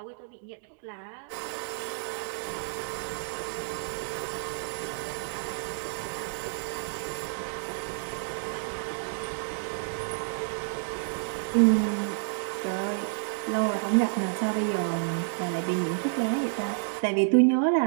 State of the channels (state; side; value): silent; left; digital silence